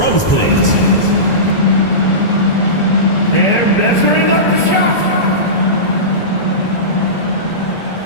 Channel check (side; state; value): right; late; 1.4 ms